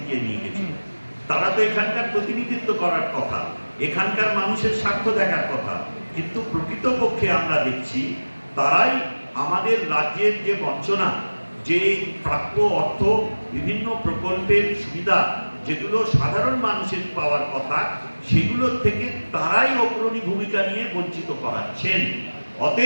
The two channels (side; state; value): both; inverted; correlation -1.00